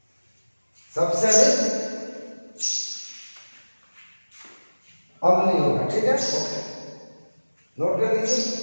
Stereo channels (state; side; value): inverted; both; correlation -1.00